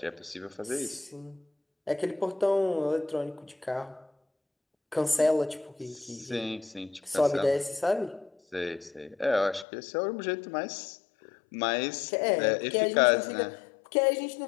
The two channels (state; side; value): drops out; right; at 9.7 s